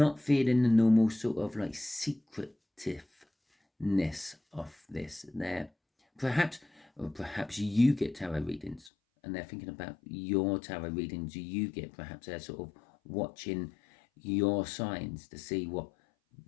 feeling the normal sort of like secretiveness of this. There, perhaps you get tarot readings and they're thinking about your tarot readings you get. Perhaps they're sort of watching your signs to see what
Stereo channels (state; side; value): drops out; right; at 8.9 s